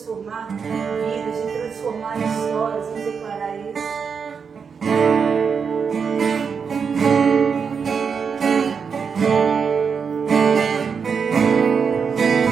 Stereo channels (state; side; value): quieter; left; 6.1 dB